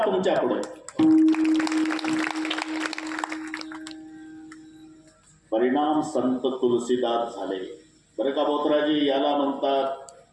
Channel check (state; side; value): identical; both; correlation 1.00